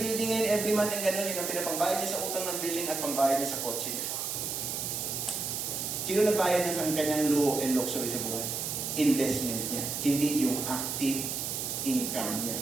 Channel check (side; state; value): right; noise; hiss, 3 dB below the sound